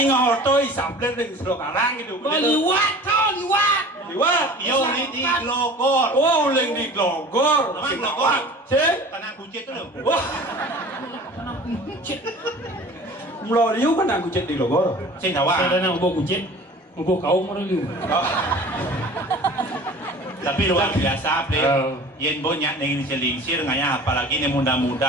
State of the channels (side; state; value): both; normal; correlation 0.42